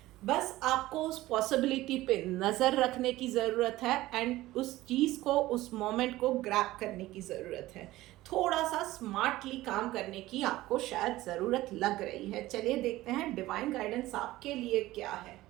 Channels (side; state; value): left; quieter; 17.0 dB